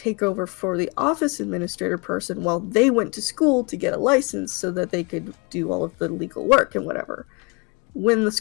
over for the office administrator person while they went to school to get a license so that they could do all of the legal work and whatever. When the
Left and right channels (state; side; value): quieter; right; 30.6 dB